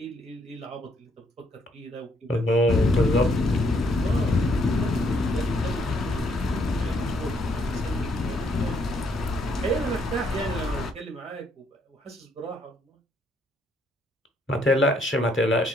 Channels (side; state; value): both; normal; correlation 0.70